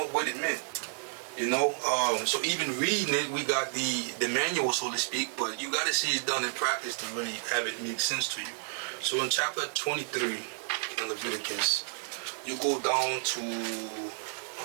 what it meant. You know, so even reading it, we got the manual, so to speak, but you got to see it done in practice to really have it make sense to you. So in chapter 23 in Leviticus, you go down to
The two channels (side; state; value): left; silent; digital silence